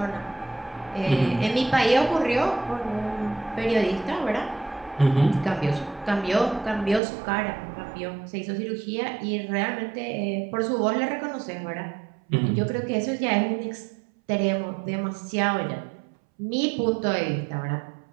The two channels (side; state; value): left; drops out; at 7.0 s